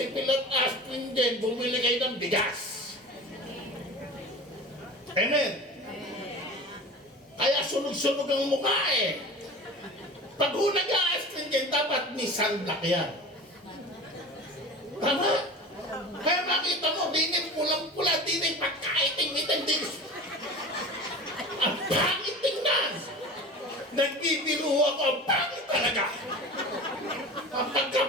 at Astringent, bumili kayo ng bigas. Amen? Kaya sunog-sunog ang mukha eh. Pag nag-Astringent, dapat ni sunblock yan. Tama? Kaya makita mo, dinin pulang-pula, dinin pagkaiting-iting, dinin. Ang pangit tingnan. Nagbibiro ako, ang pangit talaga. Ang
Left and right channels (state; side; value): normal; both; correlation 0.35